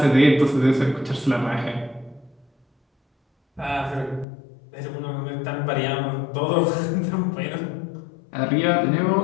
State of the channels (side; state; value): right; drops out; at 4.2 s